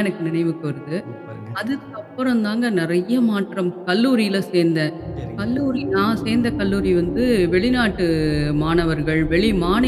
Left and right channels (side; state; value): both; identical; correlation 1.00